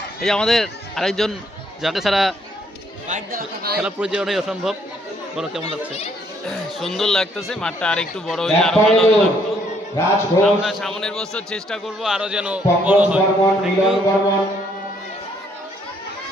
এই যে আমাদের আরেকজন, যাকে ছাড়া খেলা পরিচালনাই অসম্ভব। বলো কেমন লাগছে? সুন্দর লাগতেছে, মাঠটা আর একটু বড় হইলে আরো ভালো লাগতো। আমরা সামনের বছর চেষ্টা করব আরো যেন বড় হয়।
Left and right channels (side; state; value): both; normal; correlation 0.68